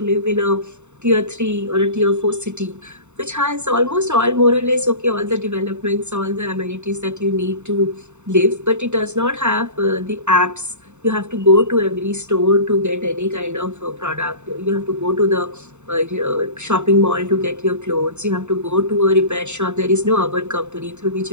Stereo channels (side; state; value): left; late; 0.83 ms